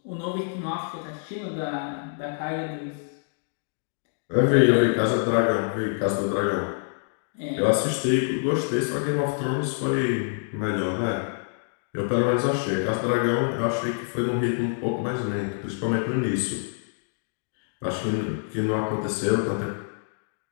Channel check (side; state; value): right; silent; digital silence